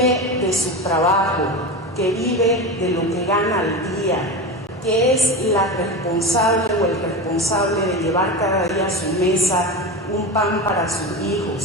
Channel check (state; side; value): normal; both; correlation 0.23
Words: de su trabajo, que vive de lo que gana al día, que es la responsable o el responsable de llevar cada día a su mesa un pan para sus